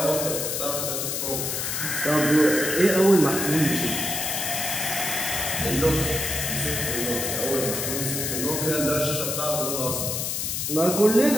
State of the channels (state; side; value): noise; left; hiss, 2 dB below the sound